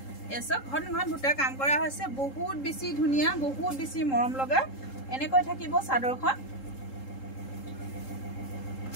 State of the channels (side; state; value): right; late; 3.7 ms